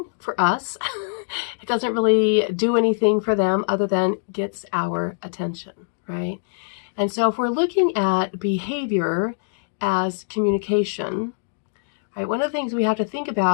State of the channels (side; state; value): right; silent; digital silence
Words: for us. It doesn't really do anything for them other than gets our attention, right? And so if we're looking at behavior as communication, right, one of the things we have to think